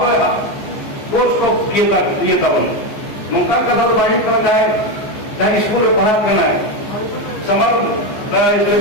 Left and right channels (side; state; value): right; late; 14 ms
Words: कोर्स को किए था मुमता का दल बाहर करना है चाहे स्कूल में पढ़ा करना है summer